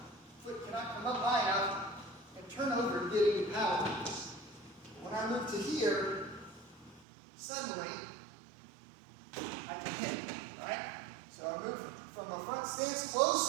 Foot cannot come up high enough and turn over and get any power. When I move to here, suddenly I can hit, right? So I move from a front stance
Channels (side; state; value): left; drops out; at 7.1 s